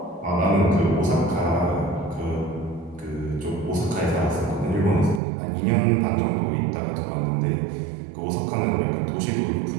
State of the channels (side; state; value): left; drops out; at 5.2 s